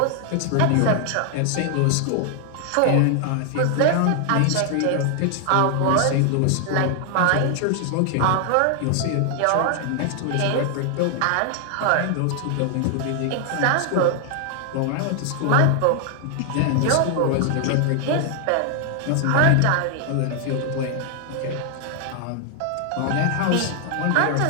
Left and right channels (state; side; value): different; both; correlation 0.00